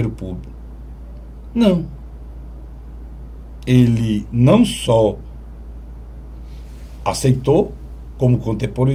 público. Não. Ele não só aceitou, como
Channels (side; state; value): both; identical; correlation 1.00